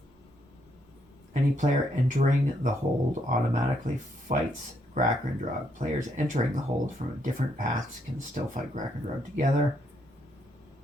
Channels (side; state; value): both; normal; correlation 0.74